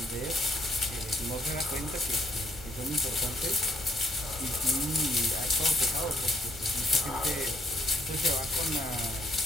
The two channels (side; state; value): both; normal; correlation 0.70